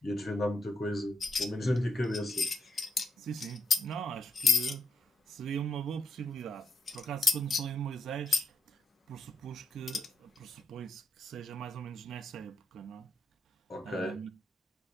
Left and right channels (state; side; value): normal; both; correlation 0.81